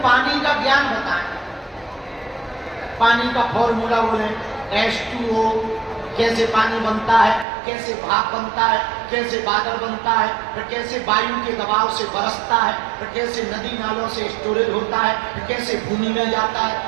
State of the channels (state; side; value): drops out; left; at 7.5 s